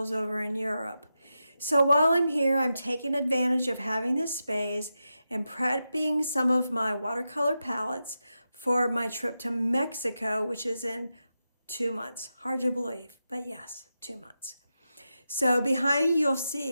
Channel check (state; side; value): inverted; both; correlation -0.90